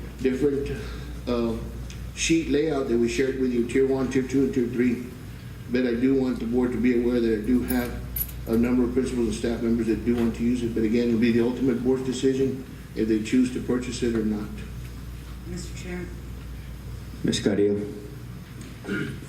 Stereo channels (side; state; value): both; identical; correlation 1.00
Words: different sheet layout that we shared with you, Tier 1, Tier 2, and Tier 3. But I do want the board to be aware that I do have a number of principals and staff members that do want to use it. But again, it'll be the ultimate board's decision if they choose to purchase it or not. Mr. Chair, Ms. Carrillo?